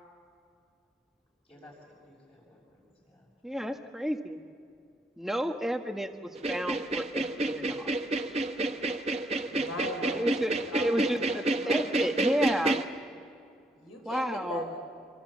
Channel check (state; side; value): normal; both; correlation 0.72